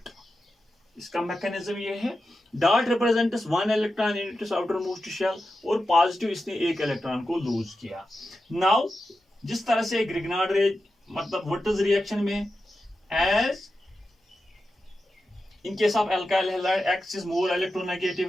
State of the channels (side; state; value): both; normal; correlation 0.91